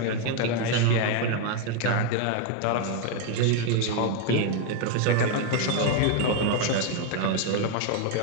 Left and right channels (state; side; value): different; both; correlation 0.01